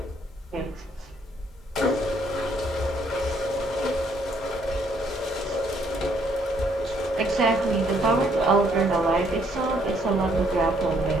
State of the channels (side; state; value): both; normal; correlation 0.68